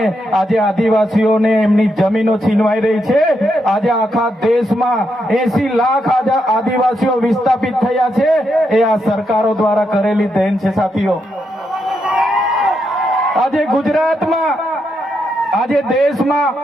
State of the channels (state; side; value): normal; both; correlation 0.81